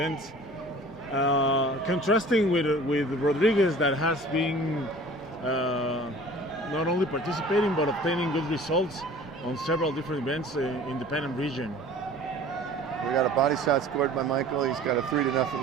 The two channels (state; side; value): normal; both; correlation 0.46